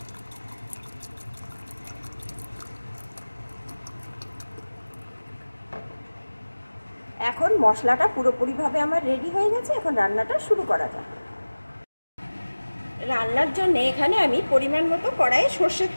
এখন মশলাটা পুরোপুরিভাবে আমার রেডি হয়ে গেছে। এখন রান্নাটা শুরু করা যাক। রান্নার জন্য এখানে আমি পরিমাণ মতো কড়াইয়ে সর্ষের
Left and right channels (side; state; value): both; inverted; correlation -1.00